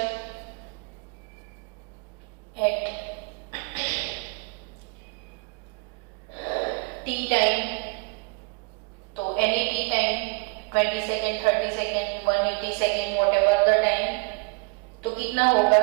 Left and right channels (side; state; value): left; quieter; 31.4 dB